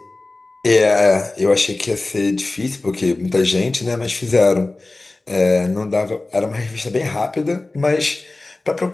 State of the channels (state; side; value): quieter; right; 3.1 dB